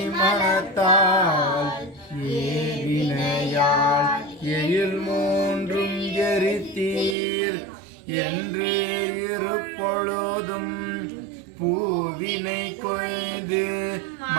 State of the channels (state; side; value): drops out; left; at 7.2 s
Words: ஏவினையால் எழில் மூன்றும் எரித்தீர் என்று இருப்பொழுதும் பூவினை கொய்து